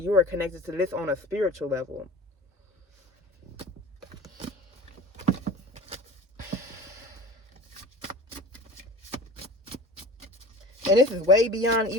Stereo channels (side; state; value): both; normal; correlation 0.37